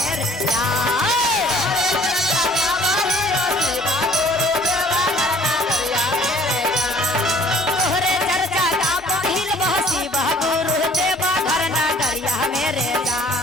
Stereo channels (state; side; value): normal; both; correlation 0.56